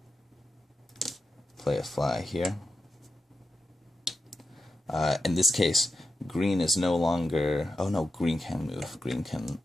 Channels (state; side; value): normal; both; correlation 0.90